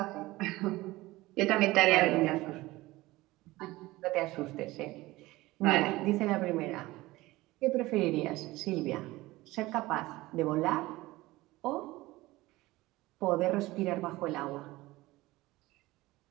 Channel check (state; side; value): quieter; left; 19.1 dB